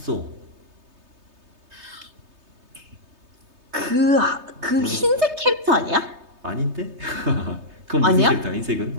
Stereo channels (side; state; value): left; late; 3.2 ms